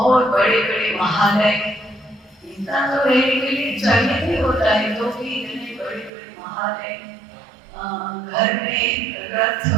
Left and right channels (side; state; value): left; drops out; at 6.1 s